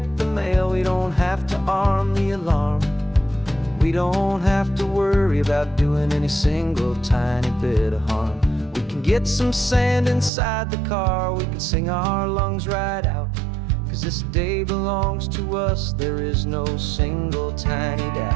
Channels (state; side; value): drops out; left; at 10.3 s